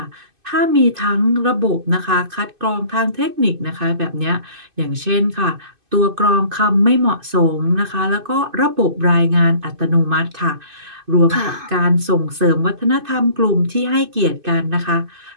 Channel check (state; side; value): late; left; 2.5 ms